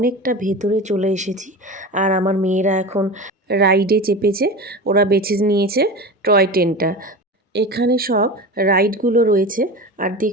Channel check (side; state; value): both; normal; correlation 0.29